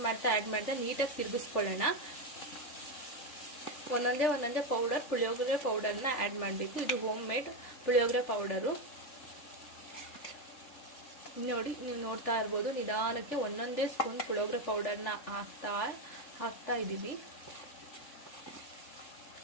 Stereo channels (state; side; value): late; right; 3.5 ms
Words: ಮಾಡ್ತಾ ನೀಟಾಗಿ ತಿರುಗಿಸ್ಕೊಳ್ಳೋಣ. ಒಂದೊಂದೇ ಪುಳಿಯೋಗರೆ ಪೌಡರ್ನ ಆ್ಯಡ್ ಮಾಡಬೇಕು. ಇದು ಹೋಮ್ ಮೇಡ್ ಪುಳಿಯೋಗರೆ ಪೌಡರು ನೋಡಿ. ನೀವು ನೋಡ್ತಾ ಇರ್ಬೋದು, ನಿಧಾನಕ್ಕೆ ಒಂದೊಂದೇ ಸ್ಪೂನ್ ಪುಳಿಯೋಗರೆ ಪೌಡರ್ನ ಹಾಕ್ತಾ ಇದ್ದೀವಿ.